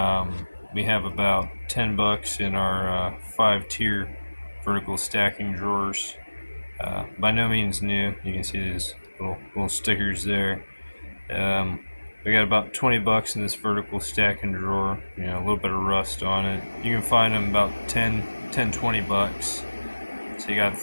We have about 10 bucks in our 5-tier vertical stacking drawers. By no means new. You can see these little stickers there. We got about 20 bucks in this vertical stacking drawer. A little bit of rust on it. You can find them about 20 bucks. So you got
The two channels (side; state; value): both; inverted; correlation -1.00